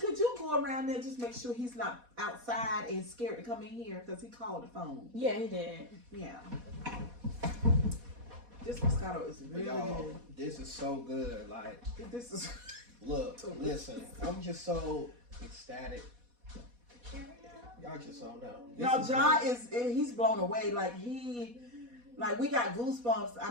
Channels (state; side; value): late; left; 4.1 ms